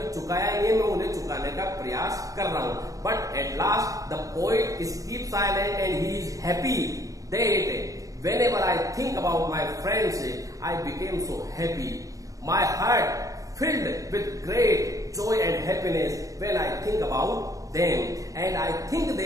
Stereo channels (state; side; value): late; left; 0.16 ms